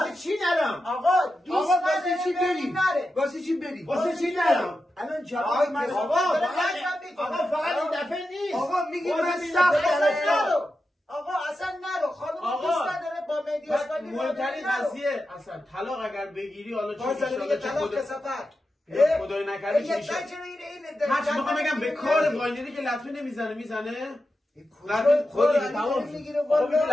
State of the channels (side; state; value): both; normal; correlation 0.90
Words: چی نرم؟ آقا دوست واسه چی بری؟ واسه چی بری؟ واسه چی نرم؟ الان جواب من آقا فقط این دفعه نیست. آقا میگی من سخت نرو. آقا اصلا نرو، خانم دوست نداره با مهدی اسماعیلی. مهمترین قضیه اصلا طلاق اگر بگیری حالا چه میگه طلاق کثافت. خدای نکرده چی میشه؟ هرچی میخوام بگم به کار واینری که لطمه نمیزنه خود